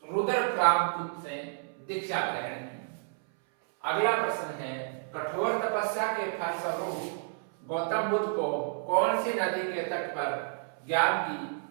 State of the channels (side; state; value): left; silent; 57 dB below the other